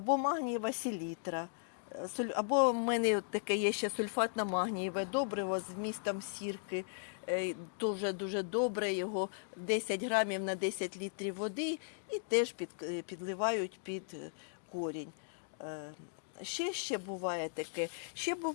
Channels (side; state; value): right; silent; digital silence